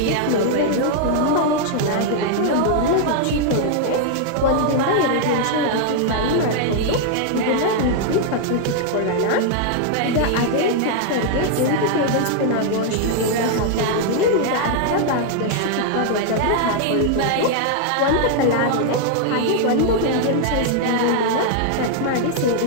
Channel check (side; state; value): both; different; correlation 0.00